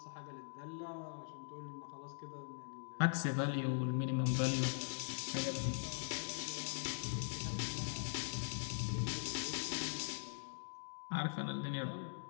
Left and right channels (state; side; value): silent; right; digital silence